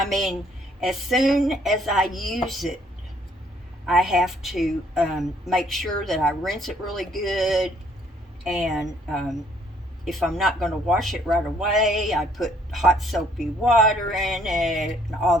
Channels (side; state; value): both; normal; correlation 0.64